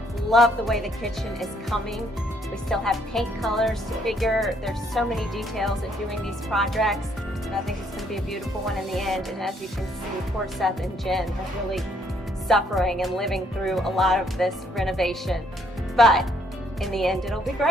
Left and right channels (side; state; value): both; normal; correlation 0.68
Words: Love the way the kitchen is coming. We still have paint colors to figure. There's so many details in doing these projects, and I think it's going to be a beautiful one in the end. And as you can see, poor Seth and Jen are really suffering and living through a lot of this renovation. But in the end, it'll be